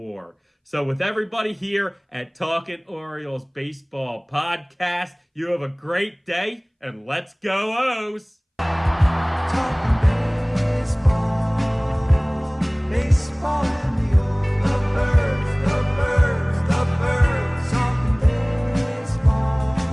So with everybody here at Talkin Orioles Baseball Podcast, you have a great day, and let's go O's! Talking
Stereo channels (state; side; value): identical; both; correlation 1.00